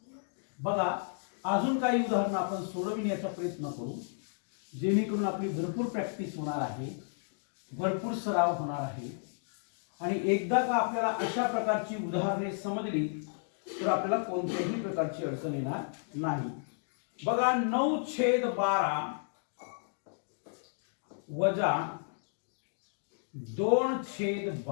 बघा, अजून काही उदाहरणं आपण सोडविण्याचा प्रयत्न करू, जेणेकरून आपली भरपूर प्रॅक्टिस होणार आहे, भरपूर सराव होणार आहे. आणि एकदा का आपल्याला अशा प्रकारची उदाहरणे समजली तर आपल्याला कोणत्याही प्रकारची अडचण येणार नाही. बघा, 9/12 वजा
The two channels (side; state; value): right; silent; digital silence